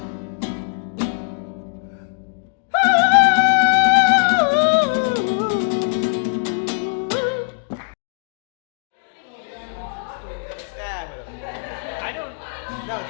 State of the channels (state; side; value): silent; right; 60 dB below the other